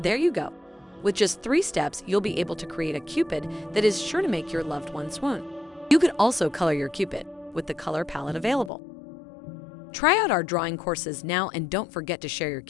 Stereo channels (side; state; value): right; drops out; at 8.7 s